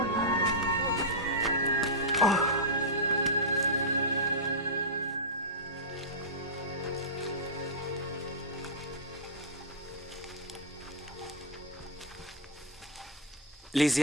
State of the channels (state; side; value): normal; both; correlation -0.09